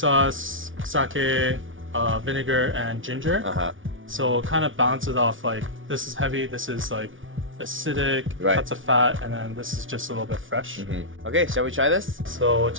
sake, vinegar, and ginger. Uh-huh. So it kind of balances off, like this is heavy, this is like acidic, Right. cuts of fat, and then this is just a little bit fresh. Okay, shall we try this? So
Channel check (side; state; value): left; late; 0.57 ms